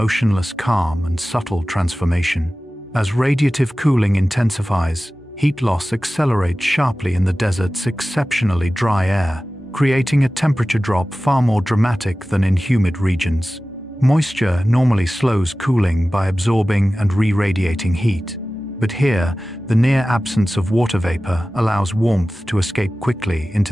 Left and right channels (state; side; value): normal; both; correlation 0.96